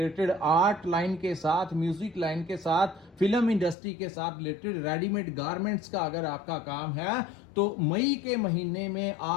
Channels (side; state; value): right; drops out; at 3.8 s